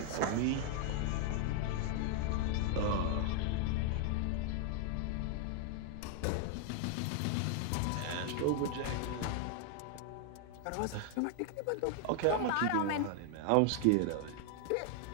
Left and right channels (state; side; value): different; both; correlation 0.00